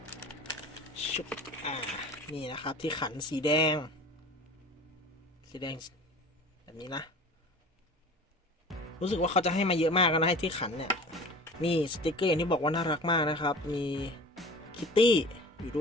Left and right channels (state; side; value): normal; both; correlation 0.41